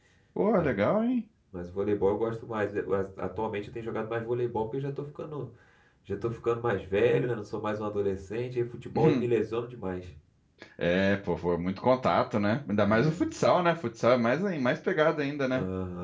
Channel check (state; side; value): identical; both; correlation 1.00